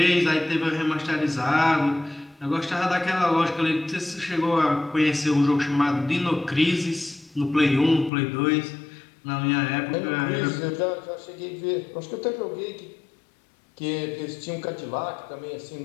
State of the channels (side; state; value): right; drops out; at 8.1 s